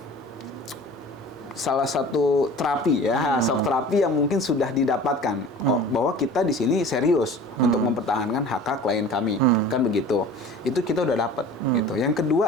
salah satu terapi ya, shock terapi yang mungkin sudah didapatkan bahwa kita di sini serius untuk mempertahankan hak klien kami, kan begitu. Itu kita udah dapat gitu. Yang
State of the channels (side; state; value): both; normal; correlation 0.42